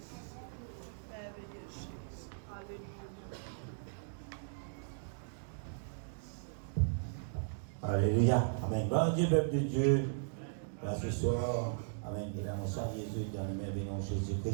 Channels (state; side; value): silent; left; digital silence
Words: Merveilleux Jésus. Alléluia. Alléluia. Amen. Bon Dieu, peuple de Dieu, là ce soir, Amen. Et là, mon sang Jésus dans le merveilleux nom de